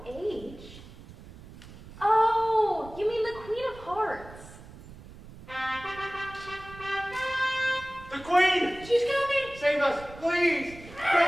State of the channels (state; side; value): noise; right; rumble, 17 dB below the sound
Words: H? Oh, you mean the Queen of Hearts. The Queen! She's coming! Save us, please!